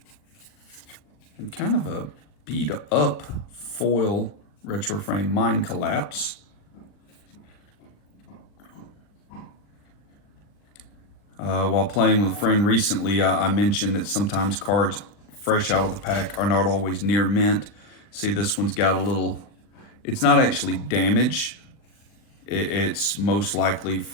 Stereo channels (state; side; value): late; right; 39 ms